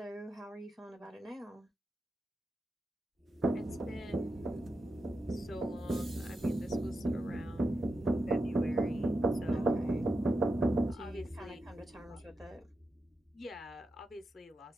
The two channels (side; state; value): both; normal; correlation 0.89